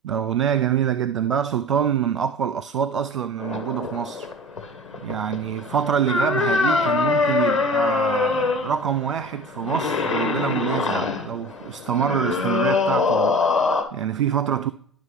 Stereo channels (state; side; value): normal; both; correlation 0.38